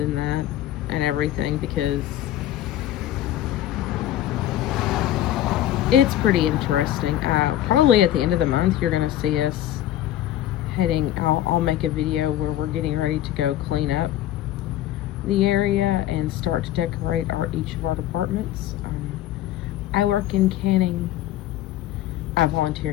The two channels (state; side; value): quieter; right; 12.9 dB